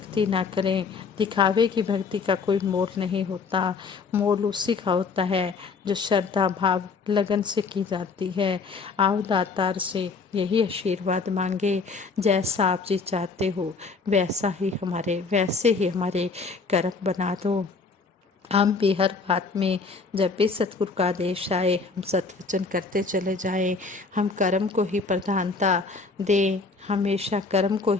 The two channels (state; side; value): quieter; right; 4.5 dB